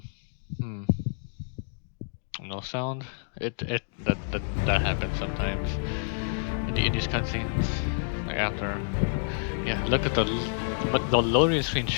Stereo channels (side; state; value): right; silent; digital silence